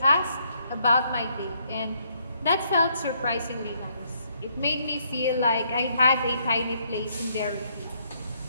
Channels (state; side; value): inverted; both; correlation -0.71